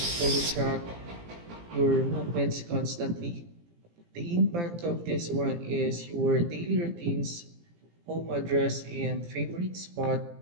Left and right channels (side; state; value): left; late; 17 ms